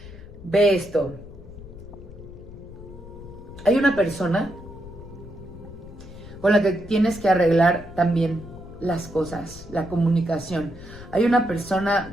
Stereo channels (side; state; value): left; noise; rumble, 16 dB below the sound